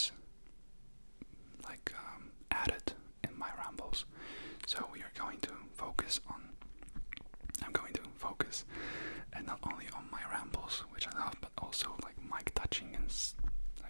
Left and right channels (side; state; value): both; inverted; correlation -1.00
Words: like added in my rambles. So we are going to focus on and not only on my rambles, which I love, but also like mic touching and